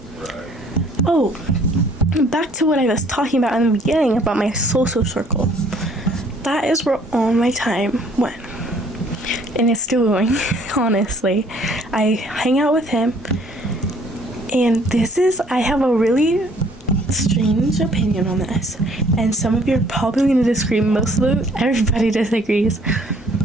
back to what I was talking about in the beginning about my social circle. That is where all my time went, and it's still going. Honestly, I hang out with him, and I have a really strange opinion on this, and some of you are probably going to disagree. Everybody disagrees,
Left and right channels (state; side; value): normal; both; correlation 0.59